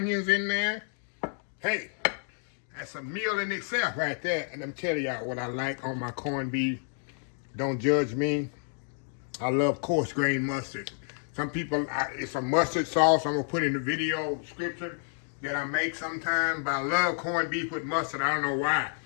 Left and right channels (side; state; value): right; silent; 55 dB below the other